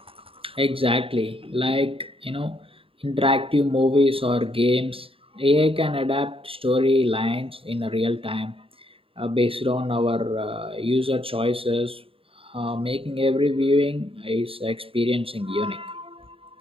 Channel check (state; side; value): late; left; 0.27 ms